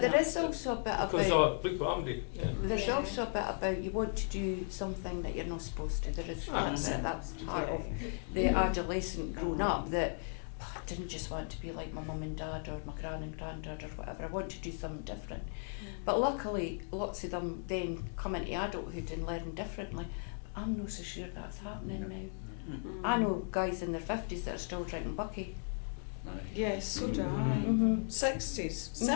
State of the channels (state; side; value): silent; right; 54 dB below the other